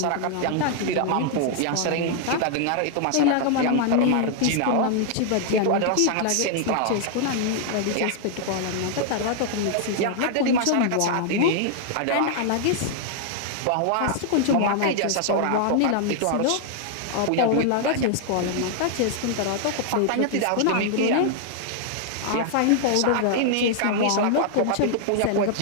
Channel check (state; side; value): different; both; correlation 0.00